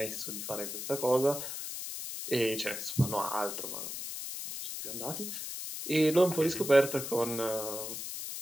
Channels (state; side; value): noise; left; hiss, 6 dB below the sound